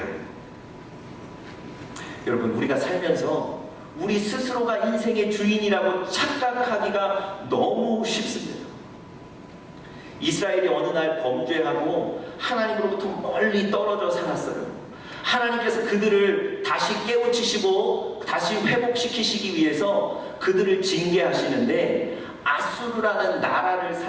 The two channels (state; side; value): identical; both; correlation 1.00